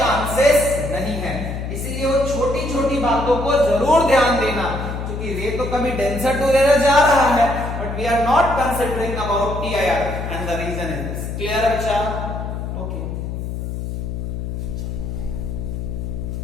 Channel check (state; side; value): noise; left; hum, 5 dB below the sound